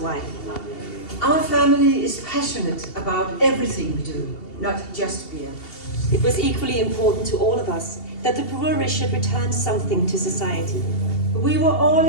Our family is passionate about everything we do, not just beer. It was equally important to all of us that the brewery should return something to society. We were all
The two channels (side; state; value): right; late; 2.7 ms